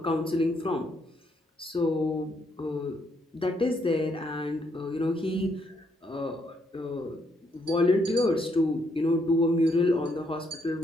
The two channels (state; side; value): normal; both; correlation 0.74